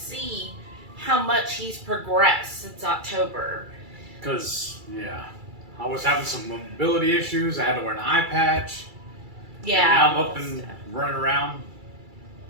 how much he's progressed since October. Because, yeah, I was having some mobility issues. I had to wear an eye patch. Yeah. And now I'm up and running around,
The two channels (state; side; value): late; left; 2.3 ms